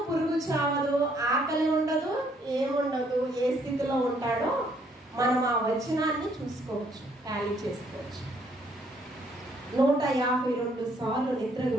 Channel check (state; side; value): normal; both; correlation 0.67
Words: పురుగు చావదు, ఆకలి ఉండదు, ఏముండదు. ఏ స్థితిలో ఉంటాడో మనం ఆ వచనాన్ని చూసుకోవచ్చు, టాలీ చేసుకోవచ్చు. 152 సార్లు నిద్ర